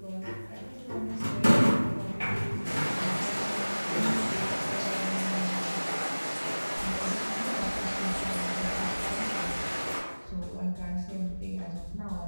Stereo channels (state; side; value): inverted; both; correlation -1.00